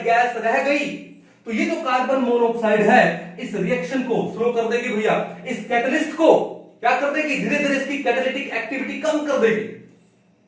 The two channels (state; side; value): identical; both; correlation 1.00